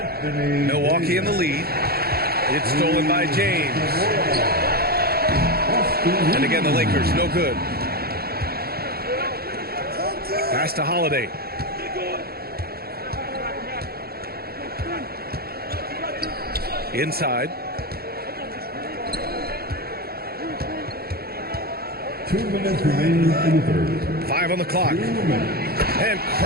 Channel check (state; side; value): late; left; 0.45 ms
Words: Milwaukee in the lead. It's stolen by James. And again, the Lakers, no good. Pass to Holiday. Inside. 2 minutes remaining in the third. 5 on the clock. And